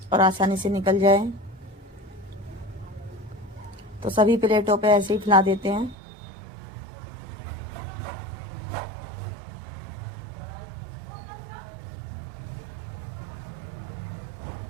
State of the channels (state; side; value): drops out; left; at 6.0 s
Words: और आसानी से निकल जाए। तो सभी प्लेटों पे ऐसे ही फैला देते हैं।